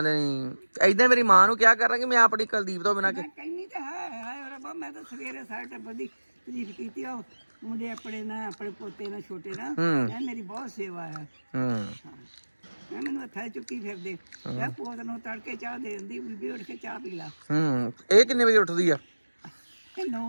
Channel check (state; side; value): inverted; both; correlation -1.00